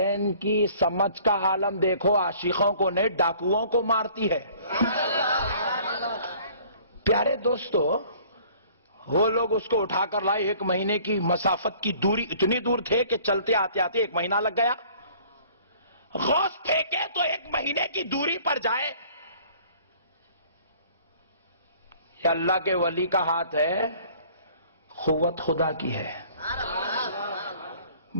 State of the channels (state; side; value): inverted; both; correlation -0.54